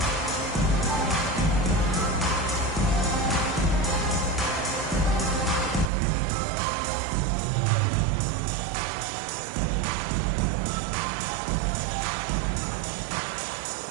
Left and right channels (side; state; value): left; drops out; at 5.9 s